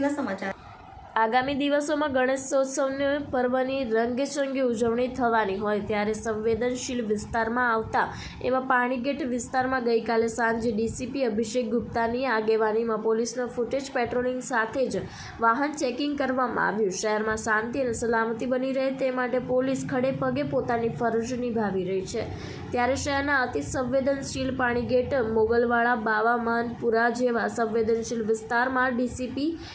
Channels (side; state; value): both; identical; correlation 1.00